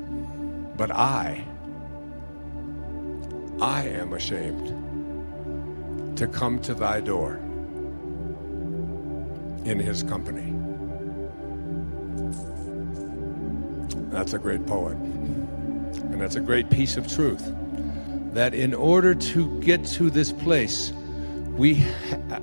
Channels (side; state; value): both; inverted; correlation -1.00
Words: but I am ashamed to come to thy door in his company. That's a great poet. And that's a great piece of truth. That in order to get to this place,